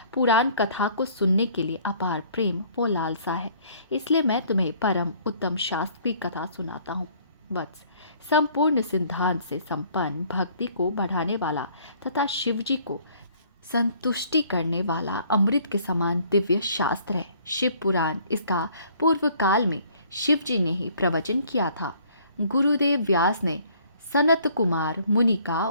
पुराण कथा को सुनने के लिए अपार प्रेम व लालसा है। इसलिए मैं तुम्हें परम उत्तम शास्त्र की कथा सुनाता हूँ। वत्स, संपूर्ण सिद्धांत से संपन्न, भक्ति को बढ़ाने वाला तथा शिव जी को संतुष्टि करने वाला अमृत के समान दिव्य शास्त्र है शिव पुराण। इसका पूर्व काल में शिव जी ने ही प्रवचन किया था। गुरुदेव व्यास ने सनत कुमार मुनि का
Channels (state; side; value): inverted; both; correlation -0.59